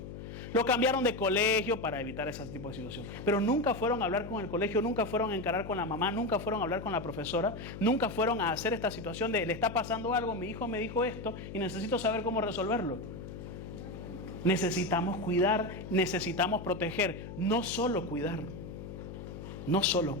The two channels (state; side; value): noise; left; hum, 10 dB below the sound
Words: Lo cambiaron de colegio para evitar ese tipo de situación. Pero nunca fueron a hablar con el colegio, nunca fueron a encarar con la mamá, nunca fueron a hablar con la profesora, nunca fueron a hacer esta situación de le está pasando algo, mi hijo me dijo esto y necesito saber cómo resolverlo. Necesitamos cuidar, necesitamos proteger, no solo cuidar, no solo